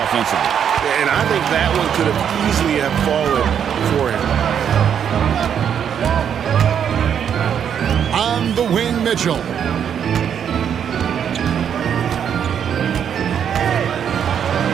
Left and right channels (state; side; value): quieter; left; 8.4 dB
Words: offensively. And I think that one could have easily have fallen for him. On the wing, Mitchell.